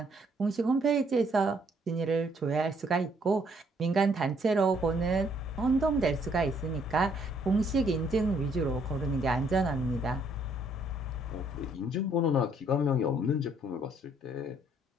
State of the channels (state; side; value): normal; both; correlation 0.66